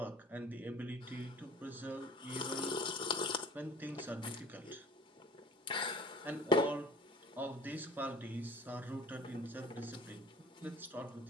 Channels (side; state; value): both; normal; correlation 0.47